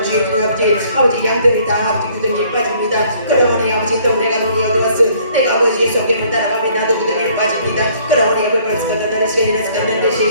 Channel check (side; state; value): both; inverted; correlation -0.60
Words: 주의 아버지 양들이 다 아버지 구덩이에 빠집니다. 그러니 아버지 또 내가 눈이 어두워서 내가 아버지의 소견을 따라가면 나도 구덩이를 은혜에 빠집니다. 그러니